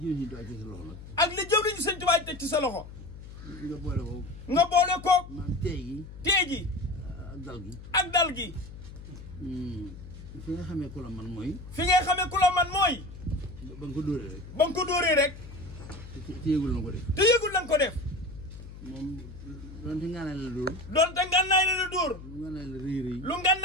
ak li jëw nañu sëñ Tuubaa teg ci sa loxo nga boole koog tee gi ak dal gi fi nga xamee ku la man mooy fi ngay xamee ku la man mooy ba nga ko dóoree rek ba nga ko dóoree rek te yëgul na ko def te yëgul na ko def moom doonte ngànnaay la dóor doonte ngànnaay la dóor lu ngànnaay la rëy rëy lu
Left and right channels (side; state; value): left; noise; hum, 14 dB below the sound